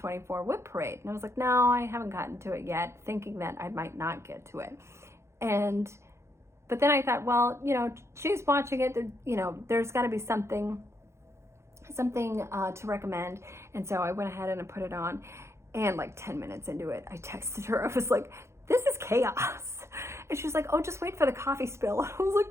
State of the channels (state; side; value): late; left; 0.13 ms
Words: Whip Parade? And I was like, no, I haven't gotten to it yet, thinking that I might not get to it. But then I thought, well, you know, she's watching it, you know, there's got to be something to recommend. And so I went ahead and I put it on, and like 10 minutes into it, I texted her. I was like, this is chaos. And she's like, oh, just wait for the coffee spill. I was like,